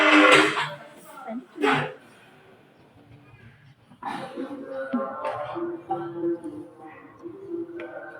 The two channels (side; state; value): both; identical; correlation 1.00